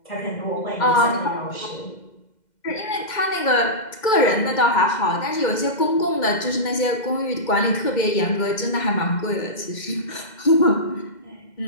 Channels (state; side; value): late; right; 2.1 ms